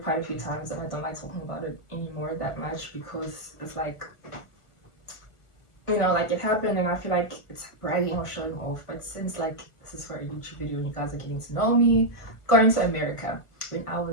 quite a few times, and I don't like talking about it anymore that much because it's like, like it happened, and I feel like it's bragging or showing off. But since like this is for a YouTube video and you guys are getting to know me, going to America when I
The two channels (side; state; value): right; late; 1.3 ms